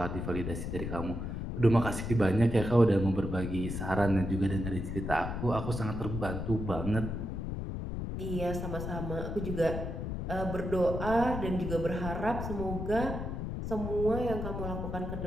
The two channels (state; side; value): noise; left; rumble, 4 dB below the sound